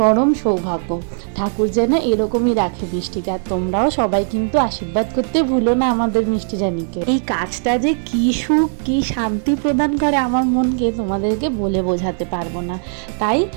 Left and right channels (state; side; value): silent; left; digital silence